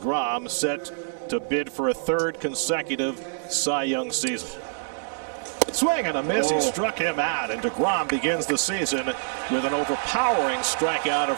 set to bid for a third consecutive Cy Young season. Swing and a miss. He struck him out, and deGrom begins the season with an overpowering strikeout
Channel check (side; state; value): left; silent; digital silence